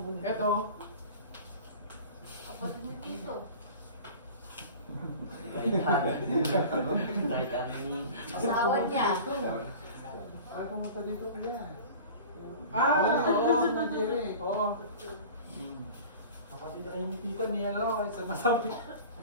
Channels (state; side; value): inverted; both; correlation -0.39